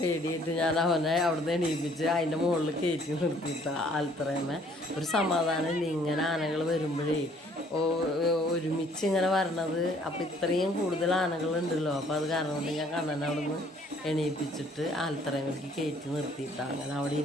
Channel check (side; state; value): both; normal; correlation 0.60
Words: ഞാൻ അവനെ അവിടുന്ന് എണീപ്പിച്ച് അതിൻ്റെ മുകളിൽ കയറ്റി നിർത്തിയിട്ടാ ആൽത്തറയമ്മ. ഒരു സമാധാനമില്ല ഇങ്ങനെ ആനകൾ വരുമ്പോഴേ ഒരുമിച്ച് ഇങ്ങനെ വരണത്. അപ്പോൾ ഇത്രയും കൂടുതൽ ആനകളുണ്ടല്ലോ. അപ്പോൾ അത് കാരണം കൊണ്ട് ഞാൻ കണ്ണനെ അവിടെ നിന്ന് എണീപ്പിച്ചിട്ട് ആൽത്തറയമ്മയ്ക്ക് കയറ്റി നിർത്തിയിട്ടാണ് അങ്ങനെ അവിടെ